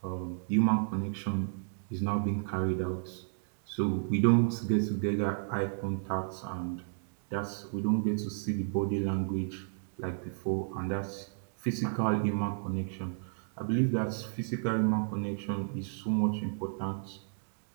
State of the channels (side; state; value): left; silent; digital silence